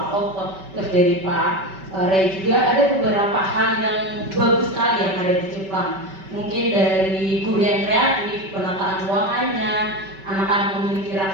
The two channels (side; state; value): left; late; 5.2 ms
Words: Otto, terus dari Pak Ray juga ada beberapa hal yang bagus sekali yang ada di Jepang. Mungkin dari guru yang kreatif, penataan ruangannya, anak-anak memiliki